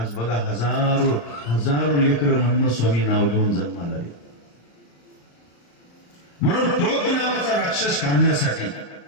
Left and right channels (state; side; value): late; right; 35 ms